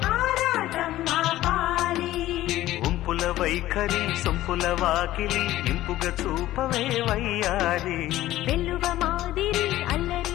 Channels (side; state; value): right; quieter; 15.0 dB